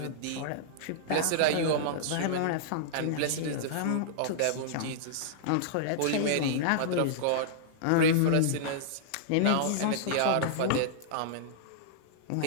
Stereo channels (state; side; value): different; both; correlation -0.02